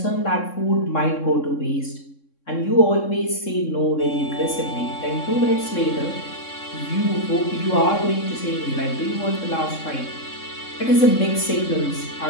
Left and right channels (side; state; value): right; late; 3.6 ms